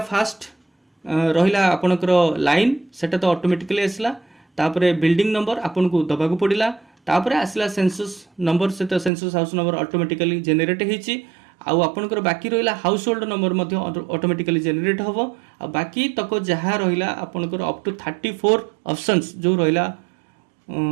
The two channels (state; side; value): drops out; left; at 9.1 s